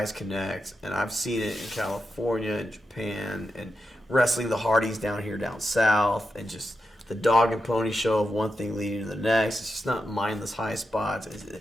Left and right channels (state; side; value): normal; both; correlation 0.88